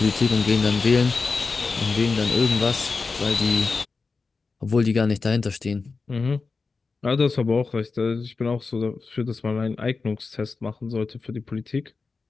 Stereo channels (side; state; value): right; quieter; 4.3 dB